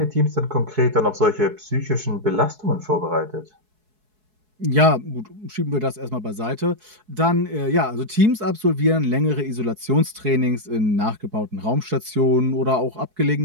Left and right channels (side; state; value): left; late; 4.7 ms